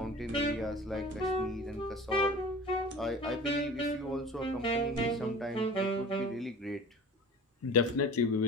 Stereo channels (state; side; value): normal; both; correlation 0.40